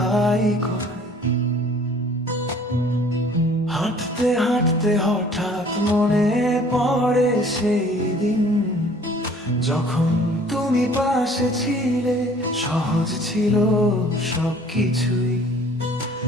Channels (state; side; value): normal; both; correlation 0.53